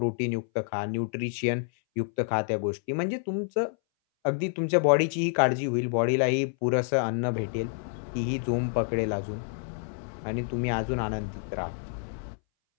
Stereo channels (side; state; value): right; silent; 59 dB below the other